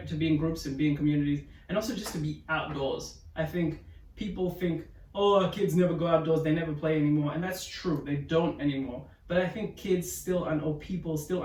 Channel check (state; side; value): identical; both; correlation 1.00